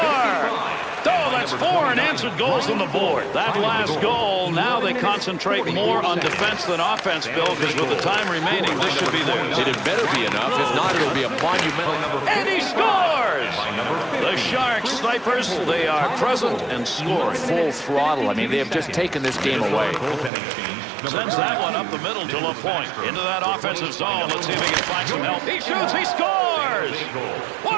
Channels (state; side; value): drops out; left; at 20.3 s